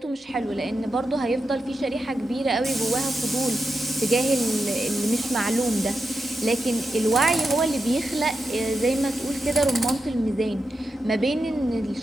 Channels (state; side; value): normal; both; correlation 0.88